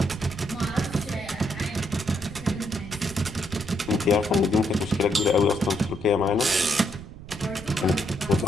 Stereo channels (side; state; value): right; noise; rumble, 14 dB below the sound